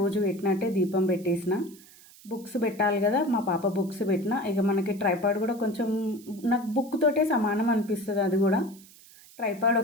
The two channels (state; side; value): noise; right; hiss, 23 dB below the sound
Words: పెట్టినట్టే దీపం పెట్టేసిన. బుక్స్ పెట్టాలి కదా, మా పాప బుక్స్ పెట్టిన. ఇక మనకి ట్రైపాడ్ కూడా కొంచెం నాకు బుక్ తోటే సమానం అనిపిస్తుంది. అది కూడా ట్రైపాడ్